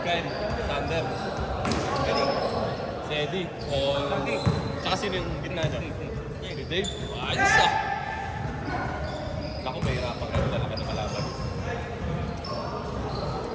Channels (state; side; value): identical; both; correlation 1.00